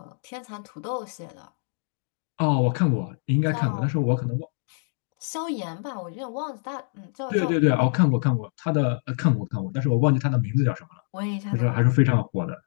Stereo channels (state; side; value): silent; right; 61 dB below the other